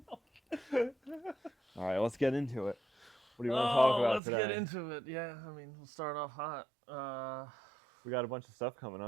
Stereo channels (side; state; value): left; drops out; at 4.2 s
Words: All right. Let's get into it. What do you want to talk about today? Let's get into it. Yeah, I mean, we'll start off hot. We got a bunch of stuff coming